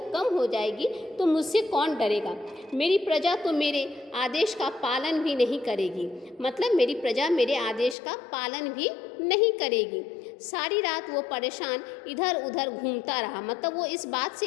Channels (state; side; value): drops out; right; at 8.0 s